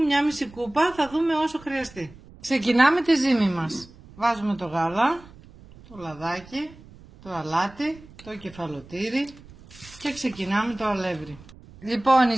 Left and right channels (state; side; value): noise; right; rumble, 22 dB below the sound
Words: μισή κούπα, θα δούμε όσο χρειαστεί. Ξεκινάμε τη ζύμη μας. Βάζουμε το γάλα, το λαδάκι, το αλάτι, το κεφαλοτήρι και ξεκινάμε το αλεύρι. Λοιπόν, η